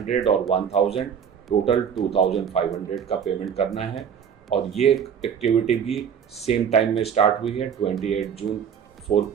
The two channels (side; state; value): left; quieter; 7.7 dB